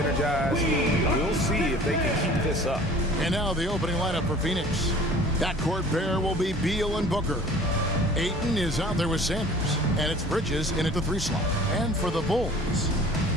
We'll see if they can keep this up. And now the opening lineup for Phoenix. Backcourt pair will be Beal and Booker. Ayton is out there with Sanders, and it's Bridges in at the 3 slot. And for the Bulls,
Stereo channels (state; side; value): normal; both; correlation 0.47